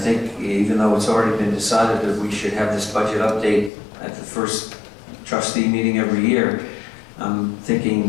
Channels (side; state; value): right; drops out; at 3.7 s